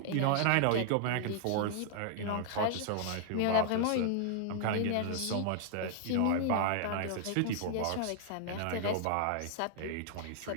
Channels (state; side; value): different; both; correlation 0.00